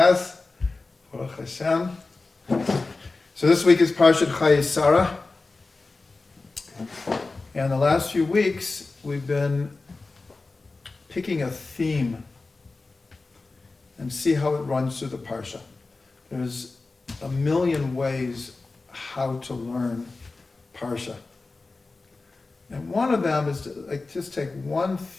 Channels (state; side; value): quieter; right; 3.6 dB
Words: Baruch Hashem. So this week is Parsha Chayei Sarah. And the last few weeks we've been picking a theme and see how it runs through the Parsha. There's a million ways how to learn Parsha. And one of them is to just take one